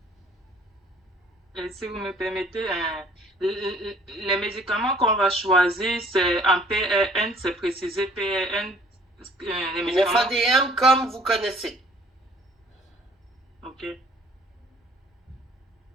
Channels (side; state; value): both; normal; correlation 0.56